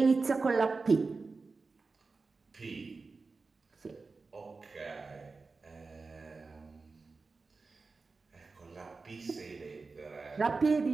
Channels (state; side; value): quieter; left; 4.1 dB